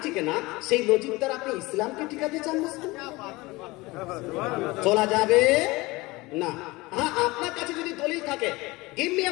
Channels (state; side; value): quieter; right; 22.0 dB